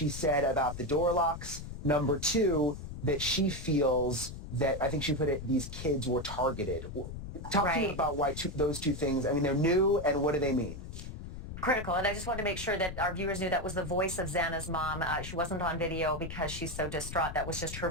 said about the door locks. Number two, that she feels that, I think she put it, these kids were targeted. Talk to me about why those two things, I mean, they're new, and what do they mean? Critical, and I just wanted to make sure that our viewers knew that was the voice of Xana's mom. She wasn't on video because she's so distraught. That was just her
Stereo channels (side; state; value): left; noise; rumble, 9 dB below the sound